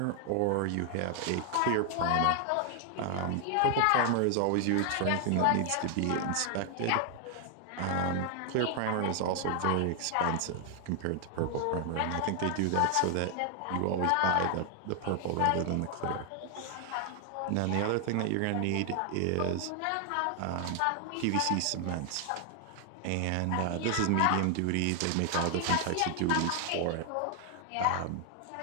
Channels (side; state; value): both; different; correlation 0.00